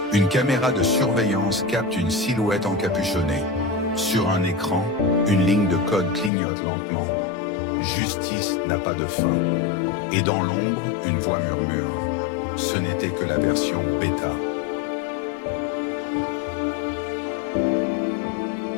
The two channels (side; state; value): right; drops out; at 6.3 s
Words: une caméra de surveillance capte une silhouette encapuchonnée. Sur un écran, une ligne de code clignote lentement. Justice n'a pas de fin. Et dans l'ombre, une voix murmure. Ce n'était que la version bêta.